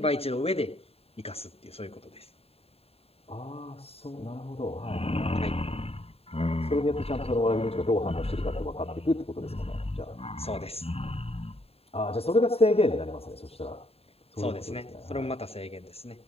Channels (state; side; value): late; right; 0.29 ms